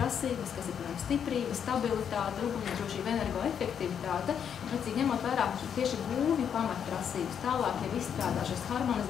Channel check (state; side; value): quieter; right; 8.1 dB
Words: kas ir, piemēram, stiprība, stabilitāte, ugunsdrošība, energoefektivitāte, precīzi ņemot vērā tieši būvju pamatprasības, tālāk jau izstrādā šos